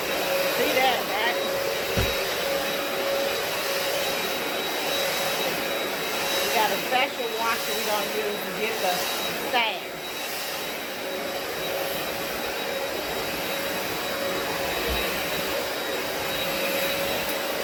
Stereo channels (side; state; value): both; identical; correlation 1.00